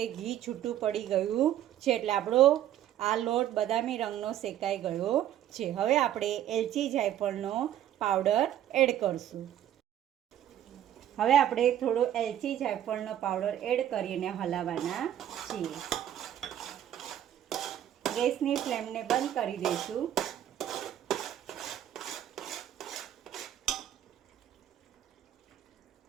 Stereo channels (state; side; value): quieter; left; 11.4 dB